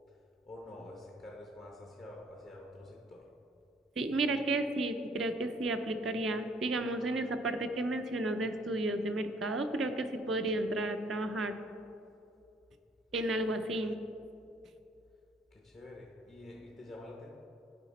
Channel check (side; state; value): both; normal; correlation 0.61